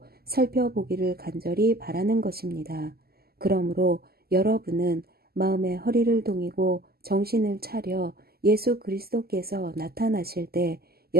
살펴보기를 간절히 바라는 것입니다. 그러므로 여러분은 마음의 허리를 동이고 정신을 차려 예수 그리스도께서 나타나실 때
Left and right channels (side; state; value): left; late; 0.45 ms